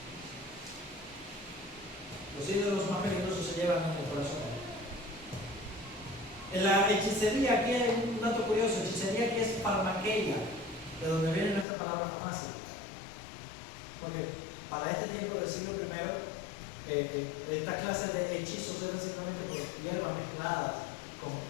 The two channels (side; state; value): right; drops out; at 11.7 s